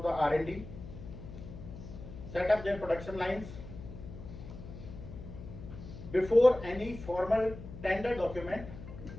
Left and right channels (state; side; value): noise; left; hum, 12 dB below the sound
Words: the R&D, set up their production lines before any formal tender document